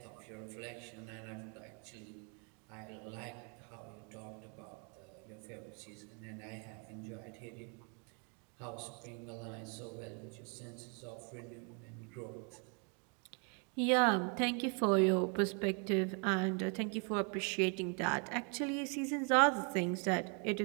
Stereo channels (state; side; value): quieter; left; 37.7 dB